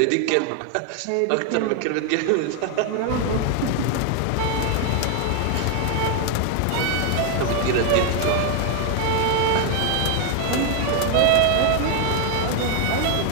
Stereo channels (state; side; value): different; both; correlation 0.00